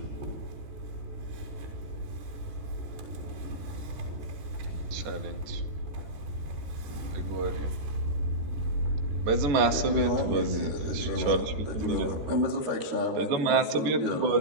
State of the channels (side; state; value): left; late; 14 ms